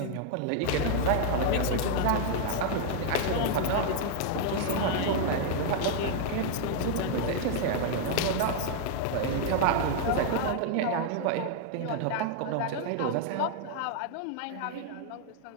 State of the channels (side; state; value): both; different; correlation 0.00